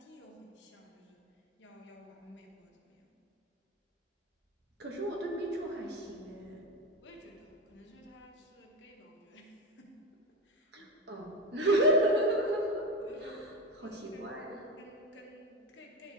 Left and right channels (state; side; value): normal; both; correlation 0.20